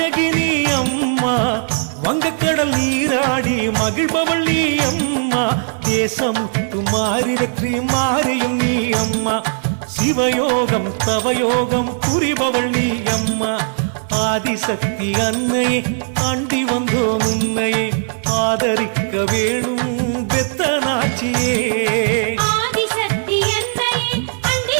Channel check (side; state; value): left; silent; digital silence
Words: அம்மா, வங்கக்கடல் நீராடி மகிழ்பவள் நீ அம்மா, தேசமுத்து மாறி வெற்றி மாறியும் நீ அம்மா, சிவயோகம் தவயோகம் புரிபவள் நீ அம்மா, ஆதிசக்தி அன்னையே அண்டி வந்தோ முன்னையே, ஆதரிக்க வேணும் பெத்தனாச்சியே. ஆதிசக்தி அன்னையே